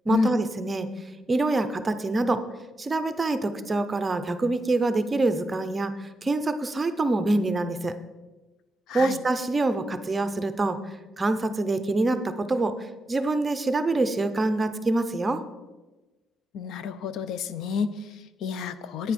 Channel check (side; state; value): both; normal; correlation 0.87